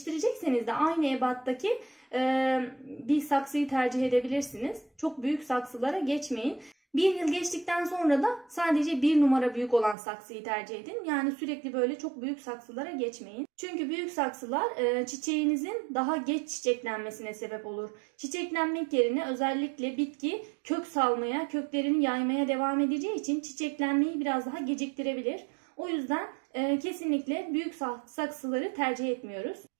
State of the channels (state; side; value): drops out; left; at 10.0 s